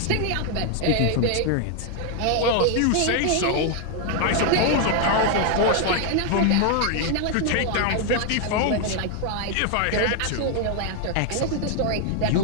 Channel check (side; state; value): both; different; correlation 0.00